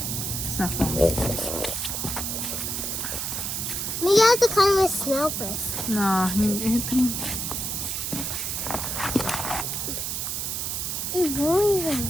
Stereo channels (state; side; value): noise; right; hiss, 2 dB below the sound